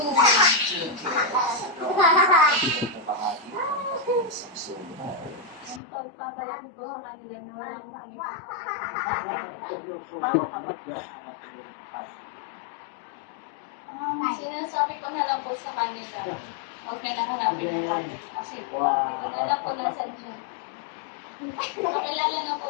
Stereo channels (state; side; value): drops out; right; at 5.8 s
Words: 2 kids. Bahagi mo sa Yung pagpapalaki po sa kanila na wala akong pangipasok. Sinasabi ko na lang po sa kanila. Huwag na lang hanapin yung kanila. Kasi po, hindi ko na lang po nasan siya. Makilala na